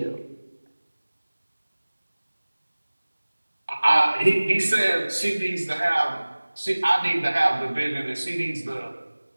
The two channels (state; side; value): inverted; both; correlation -1.00